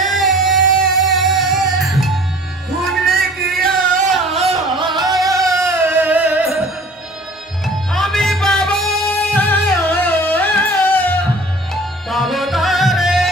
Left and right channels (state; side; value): normal; both; correlation 0.47